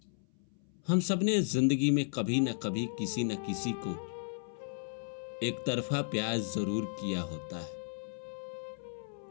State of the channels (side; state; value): right; silent; 55 dB below the other